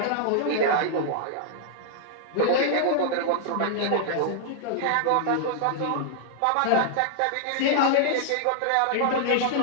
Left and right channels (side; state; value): both; different; correlation -0.01